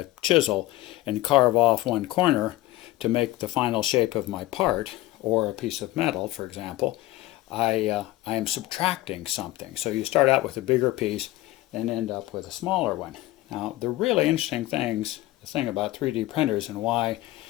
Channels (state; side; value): quieter; right; 17.2 dB